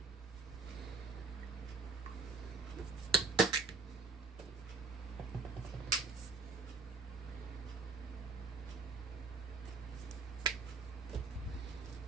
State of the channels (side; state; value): left; quieter; 4.1 dB